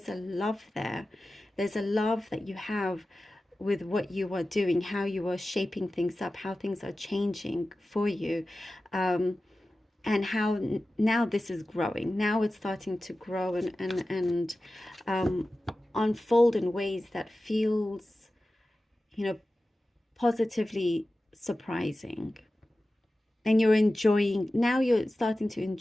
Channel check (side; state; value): both; normal; correlation 0.95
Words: a love there. There's a love that you have with what you are doing, how you are shaping things up, how things are changing for you. And how now this is growing. Now it's starting to grow and unfold in ways that feels, you know, positively surprising. And you're enjoying, now you're starting to